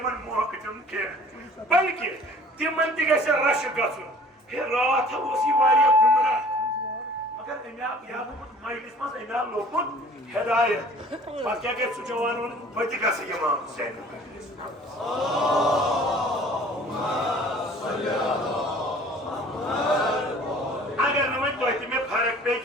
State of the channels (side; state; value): both; normal; correlation 0.50